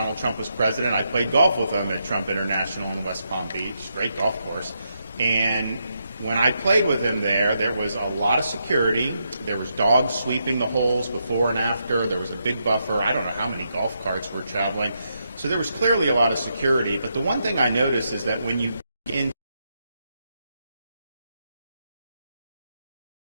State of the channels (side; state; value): both; inverted; correlation -0.81